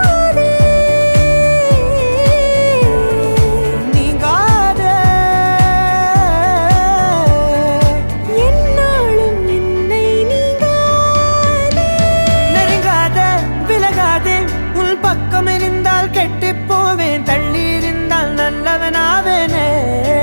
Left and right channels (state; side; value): inverted; both; correlation -1.00